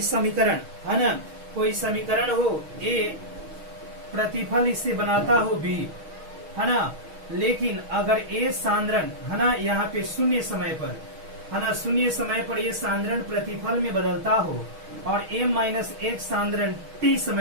समीकरण, है ना, कोई समीकरण हो ए, प्रतिफल इससे बनाता हो बी, है ना, लेकिन अगर ए सांद्रण, है ना, यहाँ पे शून्य समय पर, है ना, शून्य समय पर ये सांद्रण प्रतिफल में बदलता हो, और a माइनस एक सांद्रण t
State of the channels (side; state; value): left; late; 6.3 ms